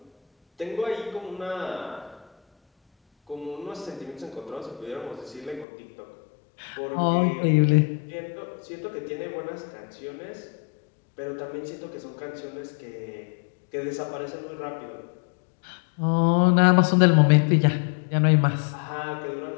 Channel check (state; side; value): drops out; right; at 5.7 s